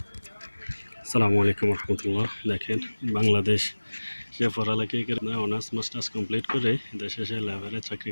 আসসালামু আলাইকুম রহমতুল্লাহ। দেখেন, বাংলাদেশ সে পড়ালেখায় করে অনার্স মাস্টার্স কমপ্লিট করে দেশে সে লেবারে চাকরি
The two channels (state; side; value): inverted; both; correlation -1.00